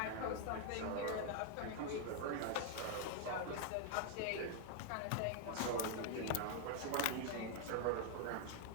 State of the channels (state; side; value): different; both; correlation 0.00